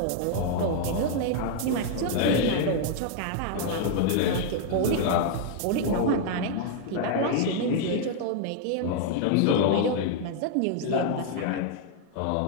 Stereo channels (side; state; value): both; different; correlation 0.00